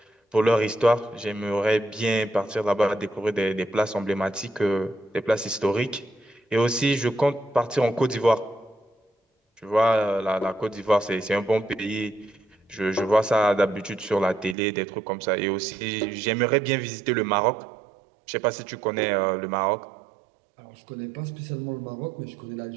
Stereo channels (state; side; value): drops out; left; at 14.6 s